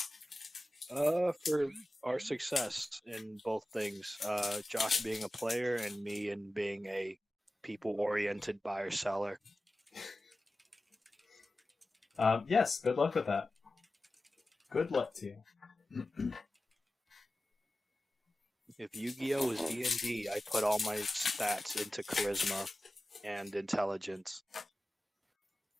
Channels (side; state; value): both; normal; correlation 0.95